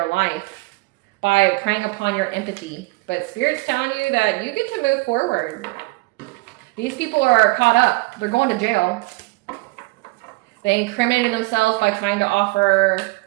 life. By preying upon your empathy. But Spirit's telling you that you get to move forward. These people are caught up. They're going to jail. They incriminated themselves by trying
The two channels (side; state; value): left; quieter; 24.1 dB